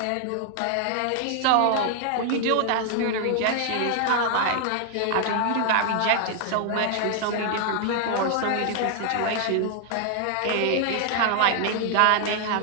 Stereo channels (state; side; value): different; both; correlation 0.00